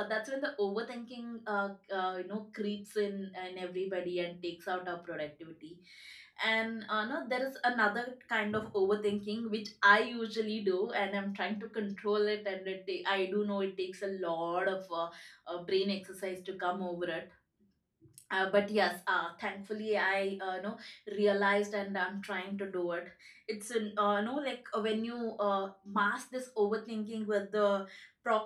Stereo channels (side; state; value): both; identical; correlation 1.00